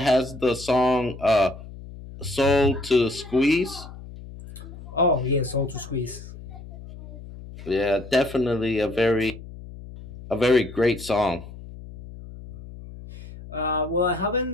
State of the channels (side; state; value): left; noise; hum, 15 dB below the sound